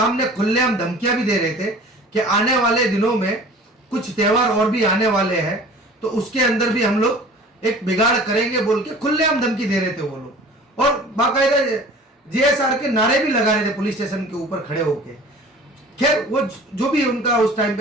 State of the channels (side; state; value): both; normal; correlation 0.44